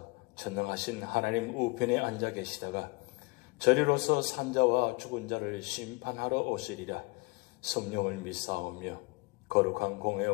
전능하신 하나님 우편에 앉아 계시다가 저리로서 산자와 죽은 자를 심판하러 오시리라. 성령을 믿사오며 거룩한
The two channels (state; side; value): quieter; right; 28.5 dB